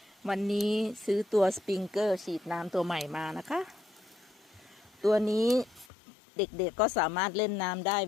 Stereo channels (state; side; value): drops out; right; at 5.9 s